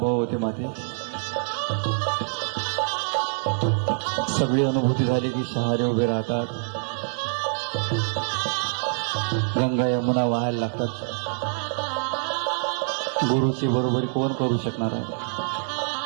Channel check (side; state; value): left; silent; 61 dB below the other